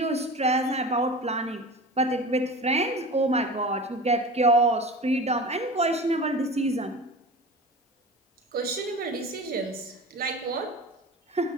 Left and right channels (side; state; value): both; normal; correlation 0.33